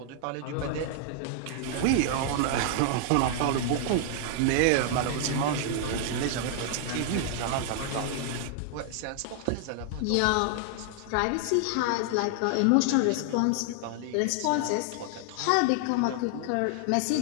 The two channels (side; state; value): both; different; correlation 0.00